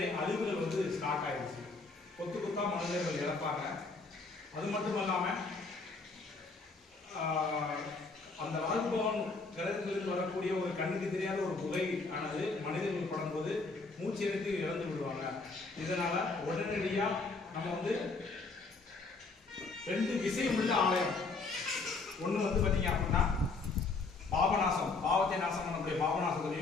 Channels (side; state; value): right; quieter; 3.9 dB